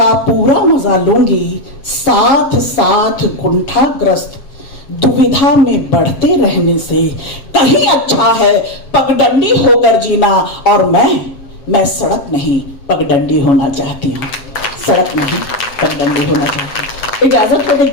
पूरा मजा लूंगी। साथ साथ कुंठाग्रस्त दुविधा में बढ़ते रहने से कहीं अच्छा है पगडंडी होकर जीना। और मैं सड़क नहीं पगडंडी होना चाहती हूँ, सड़क नहीं पगडंडी होना चाहती हूँ। इजाजत हो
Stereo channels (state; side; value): late; right; 7.3 ms